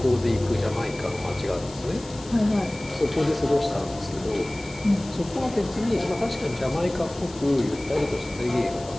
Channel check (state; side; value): noise; left; hiss, 19 dB below the sound